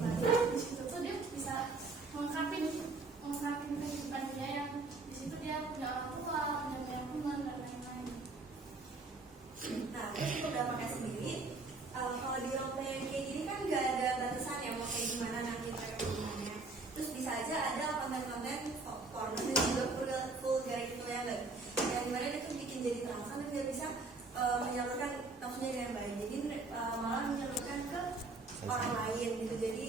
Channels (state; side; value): quieter; left; 3.6 dB